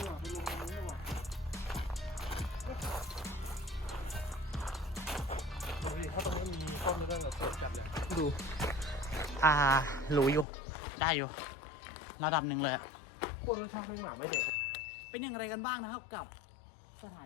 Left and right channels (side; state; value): right; drops out; at 10.5 s